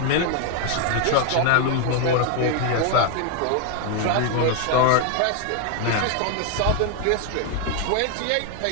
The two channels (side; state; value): both; different; correlation 0.01